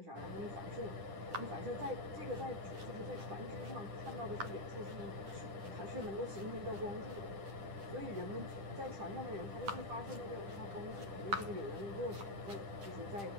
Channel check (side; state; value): left; late; 10 ms